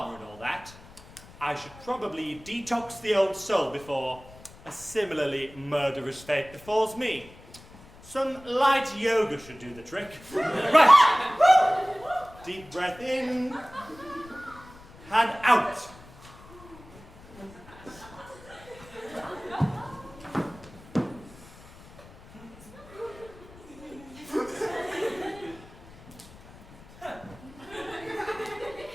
and all that, I should probably detox the old soul before a similarly murderous fate befalls me. Some light yoga should do the trick. Right. Deep breath in and out.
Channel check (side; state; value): left; noise; rumble, 21 dB below the sound